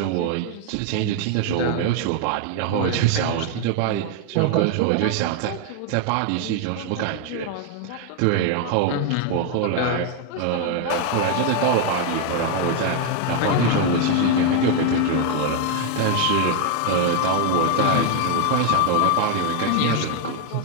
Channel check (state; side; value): different; both; correlation 0.00